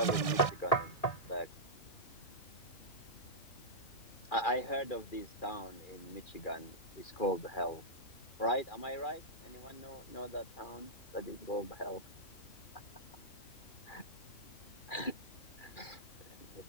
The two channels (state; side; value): late; right; 2.4 ms